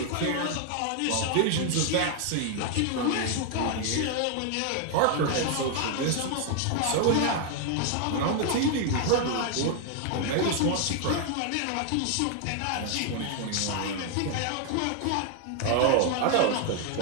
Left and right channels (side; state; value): both; different; correlation 0.00